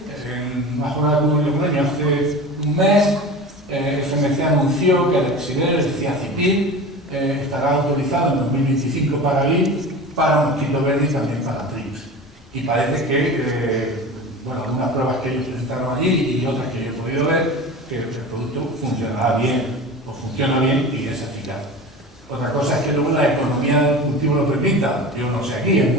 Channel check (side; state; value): both; normal; correlation 0.33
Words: bajo la Logroño hace un mes, FMC anunció que el Exider, el Ciacipir, estará autorizado en 2025 para GLIP, para mosquito verde y también para TRIPS. Y parece que, bueno, algunas pruebas que ellos presentaron allí y otras que yo he podido ver, que el producto funcionará bien, o funciona bien y es eficaz. Otra cosa es que luego la economía del cultivo lo permita. Yo no sé aquí, en